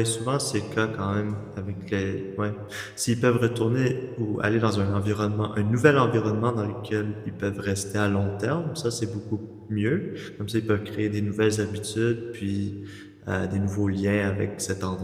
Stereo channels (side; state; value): both; identical; correlation 1.00